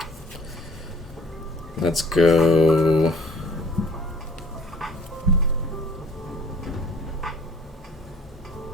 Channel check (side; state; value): both; normal; correlation 0.55